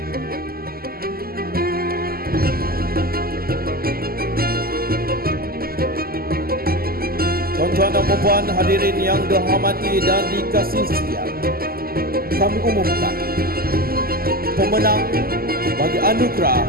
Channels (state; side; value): late; left; 0.43 ms